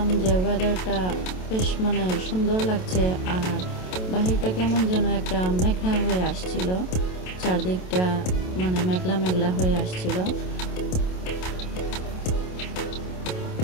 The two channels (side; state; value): right; late; 27 ms